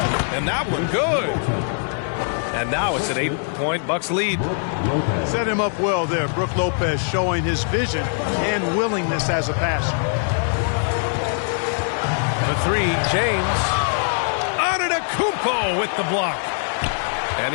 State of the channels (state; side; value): silent; right; digital silence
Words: that one good. And now it's an 8-point Bucks lead. Set him up well there. Brook Lopez showing his vision and willingness as a passer. The 3, James. Antetokounmpo with the block. And